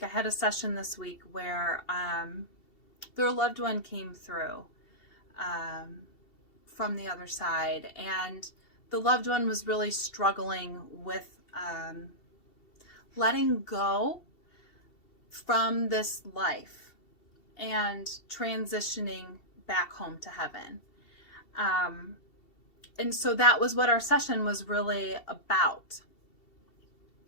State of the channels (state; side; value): late; right; 2.7 ms